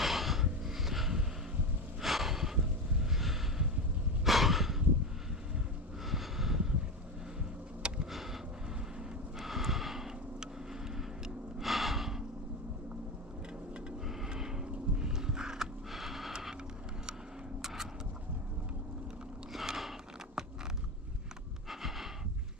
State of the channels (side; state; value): both; normal; correlation 0.19